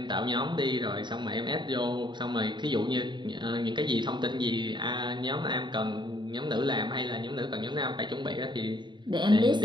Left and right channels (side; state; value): left; late; 0.22 ms